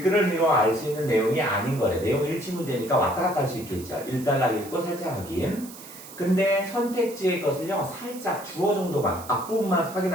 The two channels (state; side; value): noise; right; hiss, 16 dB below the sound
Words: 이루어 알 수 있는 내용이 아닌 거래. 내용 일치 문제니까 왔다 갔다 할 수 있겠죠. 1단락 읽고 살짝 확인. 근데 선택지의 것을요, 살짝 주어 정도만, 앞부분만